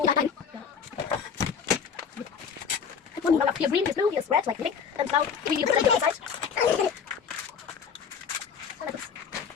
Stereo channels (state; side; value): quieter; right; 6.6 dB